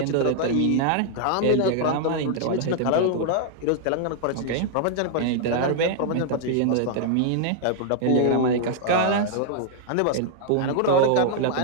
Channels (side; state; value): both; different; correlation -0.01